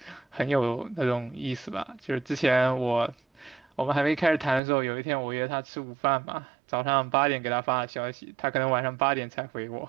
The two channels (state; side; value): drops out; left; at 4.6 s